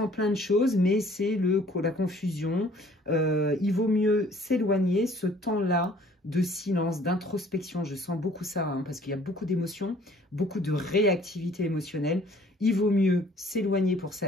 plein de choses, mais c'est la confusion. Il vaut mieux s'éloigner, ce temps-là de silence, d'introspection, je sens beaucoup ça, hein, parce qu'il y a beaucoup d'émotions, beaucoup de réactivité émotionnelle. Il vaut mieux s'éloigner pour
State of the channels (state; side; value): normal; both; correlation 0.56